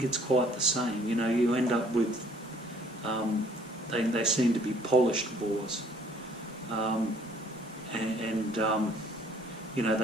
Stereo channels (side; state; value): both; normal; correlation 0.59